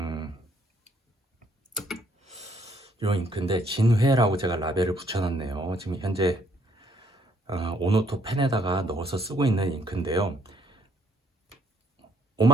이 잉크인데 진회라고 제가 라벨을 붙여놨네요. 지금 현재 오노토 펜에다가 넣어서 쓰고 있는 잉크인데요.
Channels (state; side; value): normal; both; correlation 0.67